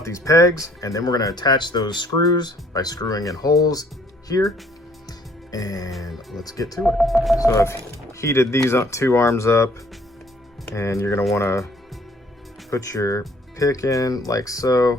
these pegs, and then we're going to attach those screws by screwing in holes here. And let's get to it. So I've heated these two arms up, and you're going to want to put your pick in like so.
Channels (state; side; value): normal; both; correlation 0.61